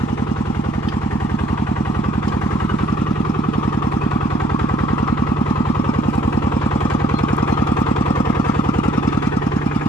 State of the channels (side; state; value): both; normal; correlation 0.62